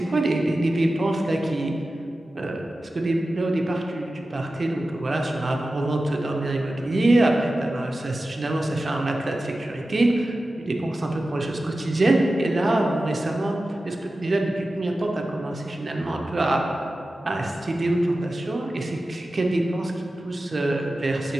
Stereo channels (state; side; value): normal; both; correlation 0.94